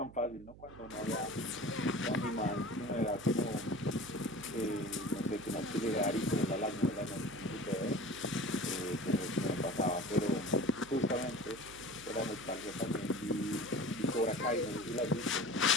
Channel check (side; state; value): right; noise; hum, 18 dB below the sound